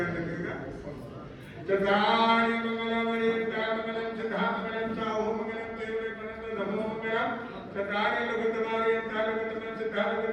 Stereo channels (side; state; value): both; identical; correlation 1.00